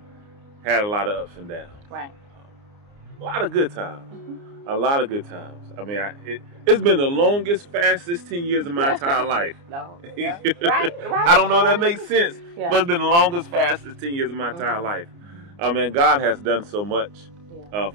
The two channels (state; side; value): late; left; 29 ms